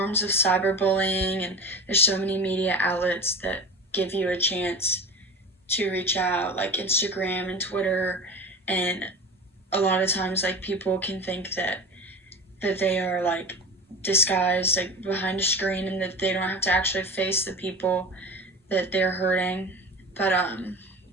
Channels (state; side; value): normal; both; correlation 0.31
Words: of cyberbullying, and there's so many media outlets that give you a chance to reach out, like Instagram and Twitter. And a lot of times, like, people can think that they are like disguised, like behind a screen, and that they don't have to actually face the people that they're hurting. But